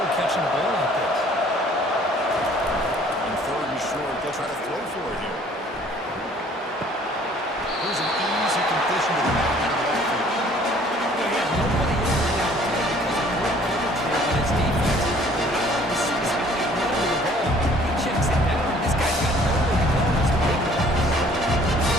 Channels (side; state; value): both; normal; correlation 0.56